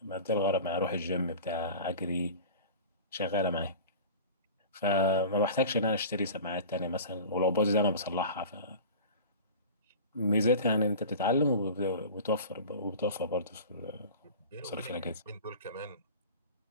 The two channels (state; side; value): inverted; both; correlation -0.36